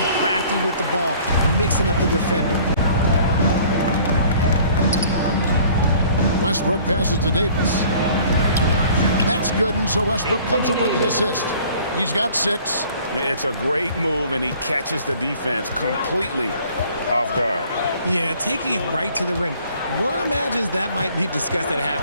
crafty with the ball, mixing up the defender. Westbrook passes to Davis. That's good, and so Westbrook comes up with the assist. He's got 6. It's a great move, and he catches the defense completely off guard. Yeah, taking it right to the rim. One imagines that might be discussed at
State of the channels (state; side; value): inverted; both; correlation -0.53